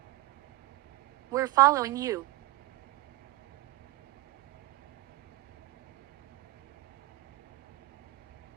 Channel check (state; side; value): quieter; left; 18.5 dB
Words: We're following you.